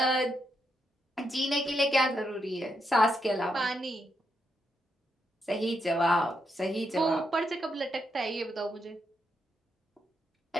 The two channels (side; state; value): both; normal; correlation 0.81